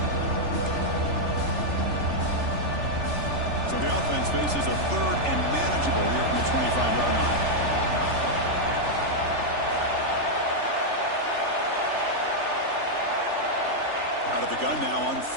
So the offense faces a third and manageable here from the 25-yard line. Out of the gun now on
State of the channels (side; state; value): left; late; 3.4 ms